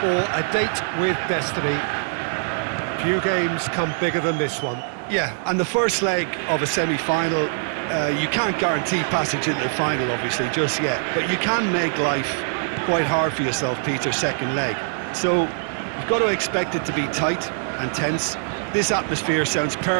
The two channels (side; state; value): left; silent; digital silence